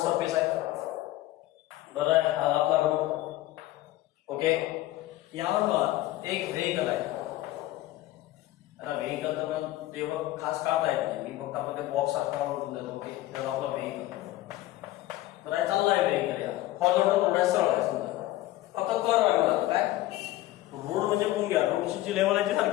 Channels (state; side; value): quieter; right; 16.0 dB